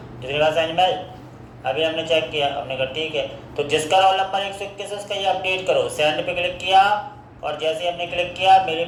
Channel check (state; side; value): identical; both; correlation 1.00